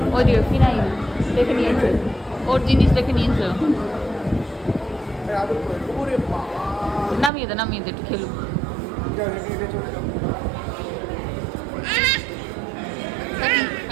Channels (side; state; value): left; drops out; at 7.3 s